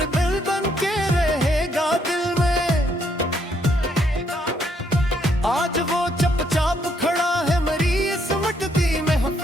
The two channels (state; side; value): normal; both; correlation 0.72